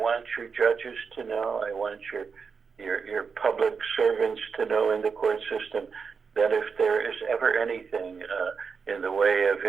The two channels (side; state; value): left; quieter; 5.6 dB